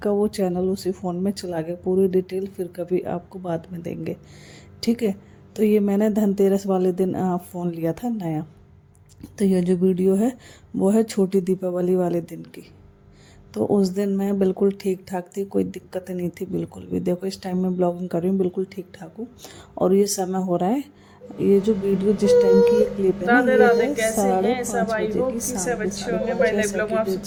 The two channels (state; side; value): identical; both; correlation 1.00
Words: वो चैनल उसी फ़ोन में चला गया। पूरी डिटेल फिर कभी आपको बाद में देंगे। ठीक है, तो ये मैंने धनतेरस वाले दिन फ़ोन लिया था नया। तो ये जो वीडियो है वो है छोटी दीपावली वाले दिन की। तो उस दिन मैं बिल्कुल ठीक ठाक थी, कोई दिक्कत नहीं थी बिल्कुल भी। देखो इस टाइम मैं ब्लॉगिंग कर रही हूँ, बिल्कुल ठीक ठाक हूँ। और ये समय हो रहा है, ये जो वीडियो जिस टाइम की ये क्लिप है ना, राधे ये राधे, है कैसे हैं सब? 5:30 आई बजे की, होप कि शाम सब की अच्छे साढ़े होंगे। पाँच मैं या नए ब्लॉग में आप